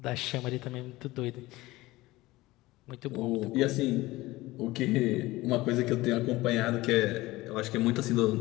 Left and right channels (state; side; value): quieter; right; 19.1 dB